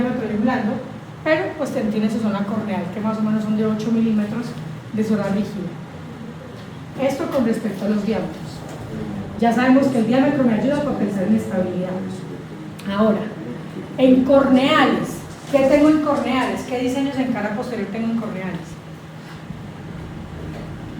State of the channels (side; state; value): both; identical; correlation 1.00